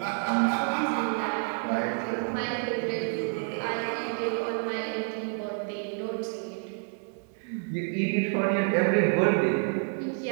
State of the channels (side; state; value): left; silent; 55 dB below the other